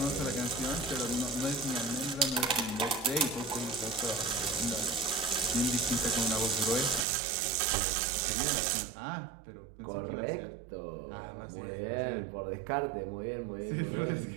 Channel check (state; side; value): drops out; left; at 7.1 s